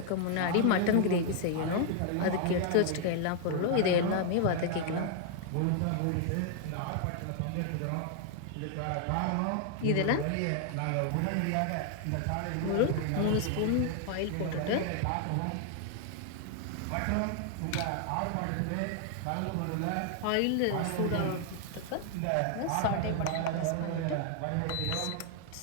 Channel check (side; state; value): both; different; correlation 0.00